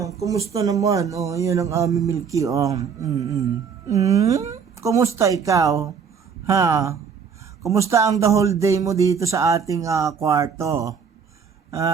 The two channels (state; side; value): quieter; left; 6.5 dB